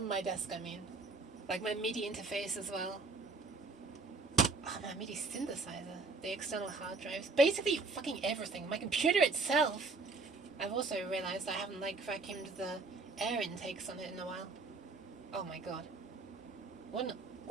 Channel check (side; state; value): left; quieter; 3.8 dB